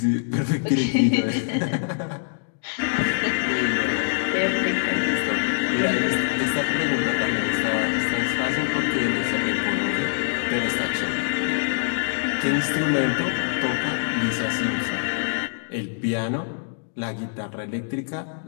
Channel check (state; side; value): silent; right; digital silence